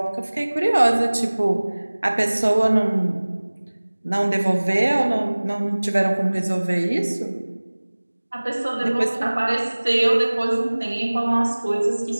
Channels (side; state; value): both; inverted; correlation -1.00